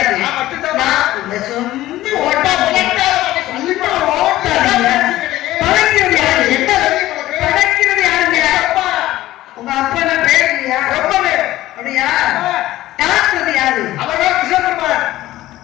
நான் மட்டும்தான் இந்த சொந்த ஓட்டா என்ன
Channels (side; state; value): right; quieter; 15.6 dB